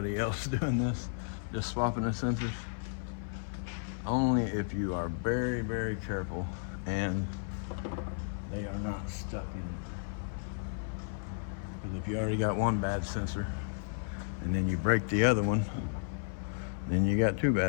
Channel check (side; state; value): right; silent; 55 dB below the other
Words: else doing this? Just swapping the sensors? Only if you are very, very careful and they are not stuck in it. Because if you already got one bad sensor and then you break the other one, then you got two